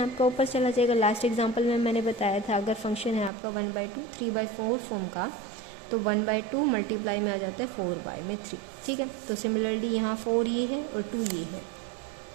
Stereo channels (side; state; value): left; drops out; at 3.3 s